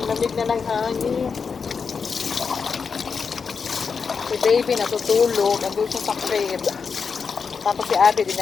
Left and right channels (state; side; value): quieter; right; 5.6 dB